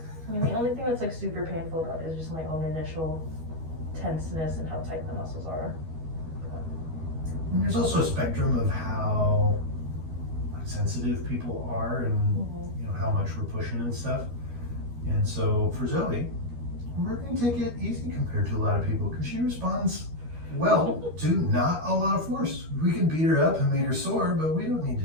I mean, the only thing that's like super painful about it is just my own initial tenseness and how tight the muscles are. And there's also a spectrum of how sensitive people are and you know how much we're pushing and stuff. And so for Zoe, we're going to take it easy compared to a lot of people because she responds well to not a lot of force. We can beat her up and make her sore, but we don't need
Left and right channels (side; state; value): left; late; 13 ms